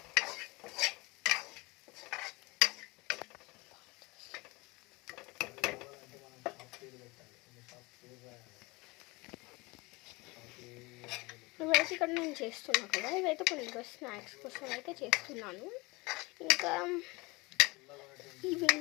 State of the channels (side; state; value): right; quieter; 24.4 dB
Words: ఇవైతే ఇక్కడ నేను చేస్తున్నాను కదా, ఇవైతే కొన్ని స్నాక్స్ కోసం అయితే చేస్తున్నాను. ఇంకా